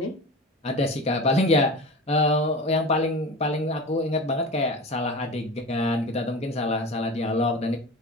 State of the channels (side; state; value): both; normal; correlation 0.31